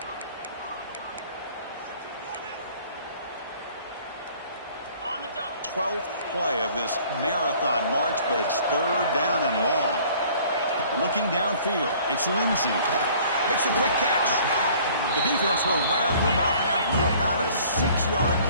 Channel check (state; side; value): inverted; both; correlation -0.53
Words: On the double. 12th play of this marathon march, but it's 3rd down and long. Looking downfield, it's Lindsey. Makes a quick catch. The defense will wrap him up after about a 6-yard